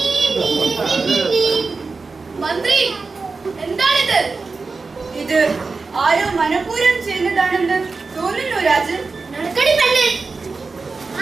മന്ത്രി, എന്താണിത്? ഇത് ആരോ മനഃപൂർവ്വം ചെയ്യുന്നതാണെന്ന് തോന്നുന്നു രാജ്. നടക്കടി പെണ്ണ്.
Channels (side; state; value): left; quieter; 4.2 dB